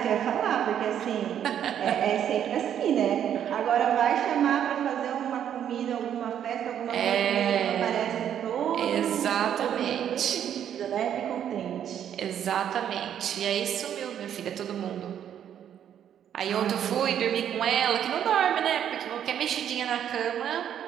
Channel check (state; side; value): quieter; left; 9.6 dB